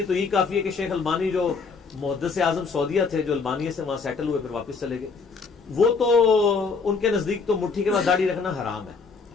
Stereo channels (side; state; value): right; quieter; 4.8 dB